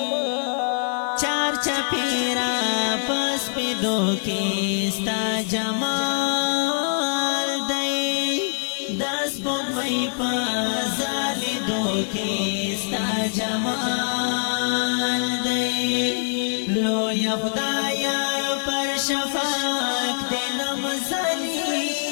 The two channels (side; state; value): right; silent; digital silence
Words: چار چپیرا پس پیدو کی ستا جمال دی دس بون مئی پازالی دو کی ستا جمال دی لو یا خدایا پر شفاق دلم